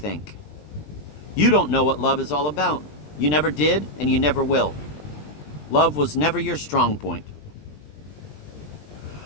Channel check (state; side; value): late; right; 20 ms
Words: You don't know what love is all about. You never did, and you never will. Love was never your strong point."